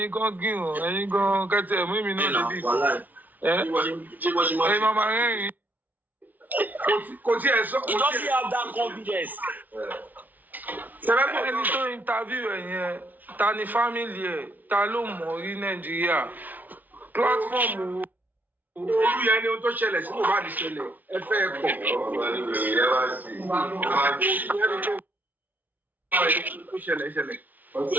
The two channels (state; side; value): late; left; 0.080 ms